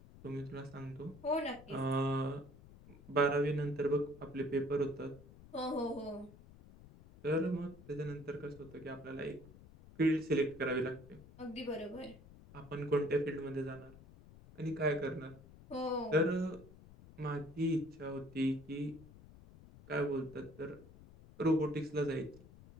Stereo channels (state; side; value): noise; left; rumble, 20 dB below the sound